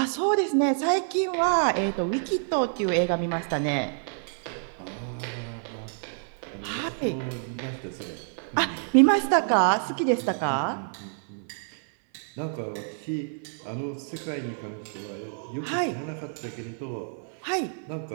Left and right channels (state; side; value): silent; left; 59 dB below the other